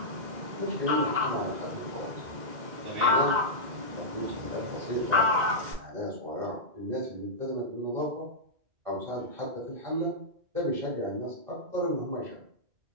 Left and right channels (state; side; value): late; left; 1.9 ms